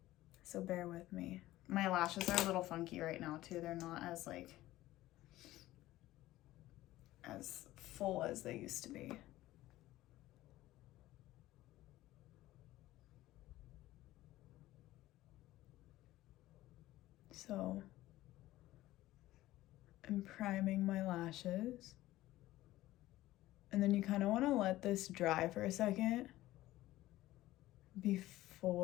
So bear with me. My lashes are a little funky right now too. They're not as like as full as they used to be. So I'm priming my lashes. And then you kind of want to let this dry for a second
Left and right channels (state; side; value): quieter; right; 16.1 dB